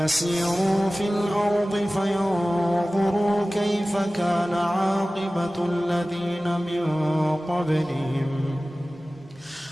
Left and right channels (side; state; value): both; normal; correlation 0.97